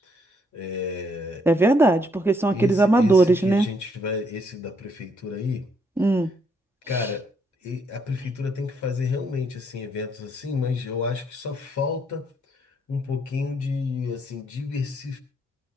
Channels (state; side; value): normal; both; correlation 0.72